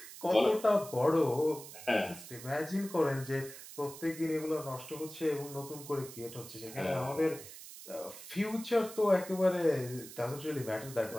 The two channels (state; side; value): noise; right; hiss, 14 dB below the sound